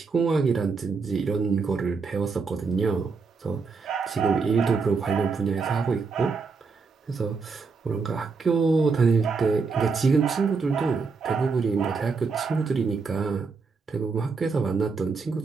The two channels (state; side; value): quieter; left; 4.8 dB